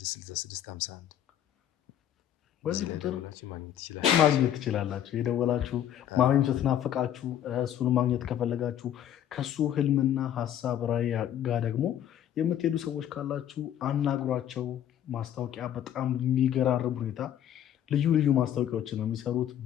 66 51 በዚህ ቁጥር ማግኘት ትችላላችሁ። የደወላችሁ ማግኘት ስትናፍቃችሁ እሱን ማግኘት ከፈለጋችሁ ከሱ ህልምና ሀሳብ ራዕይ ጋር ደግሞ የምትሄዱ ሰዎች ካላችሁ አናግሯቸው። ማስታወቂያ በጣም የሚገራርም ሁኔታ ልዩ ልዩ ማስታወቂያዎችን ነው የሚሰሩት።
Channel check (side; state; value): right; quieter; 10.6 dB